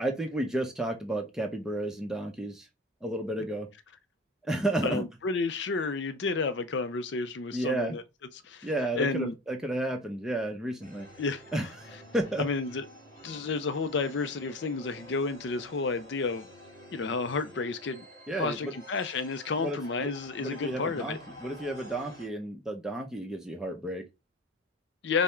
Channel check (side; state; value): both; normal; correlation 0.32